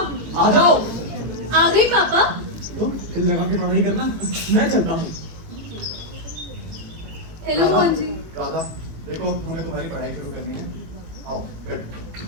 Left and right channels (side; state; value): left; late; 18 ms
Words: आ जाओ। आ गई पापा। तो दिल लगा के पढ़ाई करना, मैं चलता हूँ। हेलो मोहन जी। राधा देखो, हमें तुम्हारी पढ़ाई शुरू करनी है। आओ बैठो।